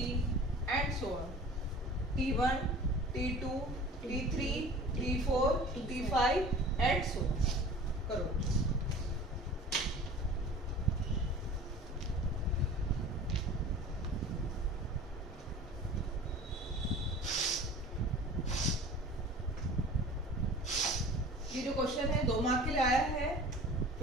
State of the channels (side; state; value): both; normal; correlation 0.42